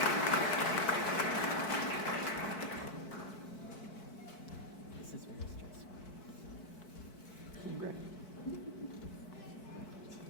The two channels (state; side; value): late; right; 4.6 ms